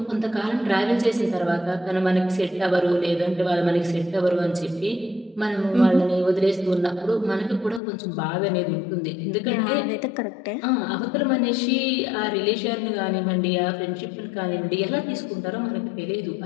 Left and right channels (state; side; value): drops out; right; at 7.8 s